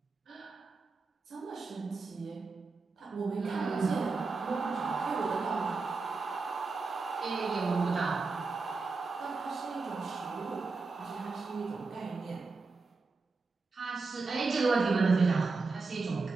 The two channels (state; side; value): quieter; left; 4.1 dB